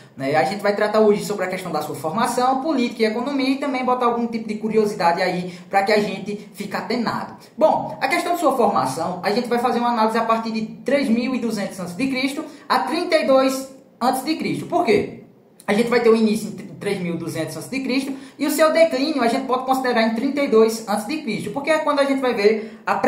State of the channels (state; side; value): identical; both; correlation 1.00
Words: Né? A gente vai tratar hoje sobre a questão da sua formação, política e economia e também botar algum tipo de curiosidade aí para que a gente fique atenado. Bom, a questão de sua formação, a gente vai fazer uma análise a partir de 3.200 a.C. a 32 a.C. Por quê? A gente vai ter o início em 3.200 a.C. e o seu declínio a gente pode considerar em 32 a.C. Porque é quando a gente vai ver a